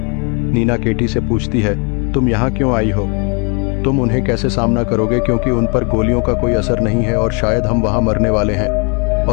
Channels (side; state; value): right; quieter; 35.5 dB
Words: नीना केटी से पूछती है, तुम यहाँ क्यों आई हो? तुम उन्हें कैसे सामना करोगे, क्योंकि उन पर गोलियों का कोई असर नहीं है और शायद हम वहाँ मरने वाले हैं।